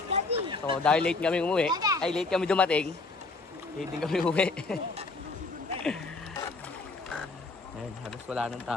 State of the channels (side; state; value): right; quieter; 3.5 dB